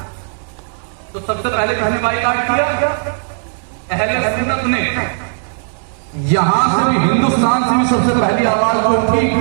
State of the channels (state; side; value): silent; left; 61 dB below the other